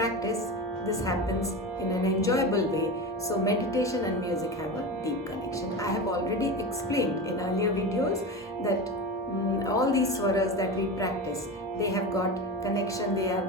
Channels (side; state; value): both; normal; correlation 0.25